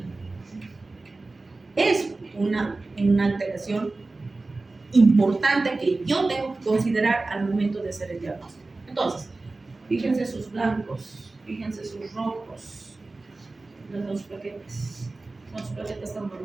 Es una alteración importante que yo tengo que considerar al momento de hacer el diagnóstico. Entonces, fíjense sus blancos, fíjense sus rojos, los dos plaquetas. Los plaquetas están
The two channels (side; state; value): left; quieter; 3.3 dB